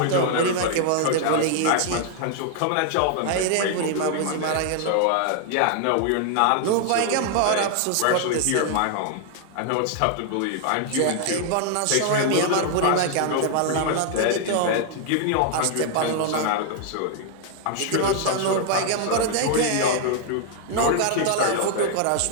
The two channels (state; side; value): different; both; correlation 0.00